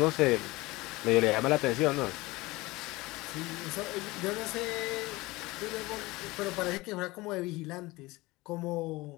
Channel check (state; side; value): quieter; right; 21.1 dB